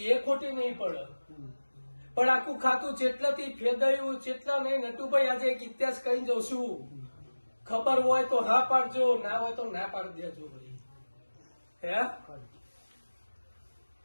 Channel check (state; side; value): inverted; both; correlation -1.00